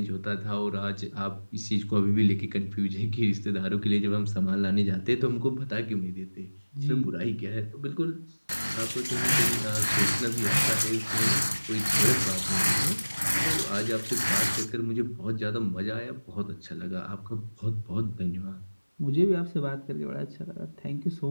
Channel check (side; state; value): both; inverted; correlation -1.00